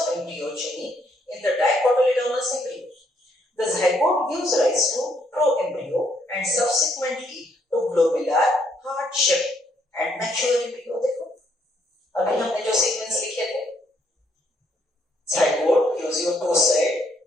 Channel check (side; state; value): both; normal; correlation 0.71